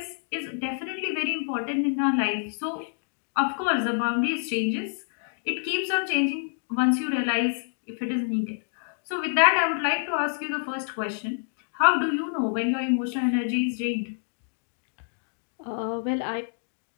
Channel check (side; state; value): right; silent; digital silence